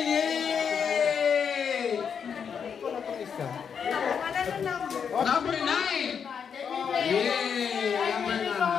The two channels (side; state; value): right; quieter; 7.0 dB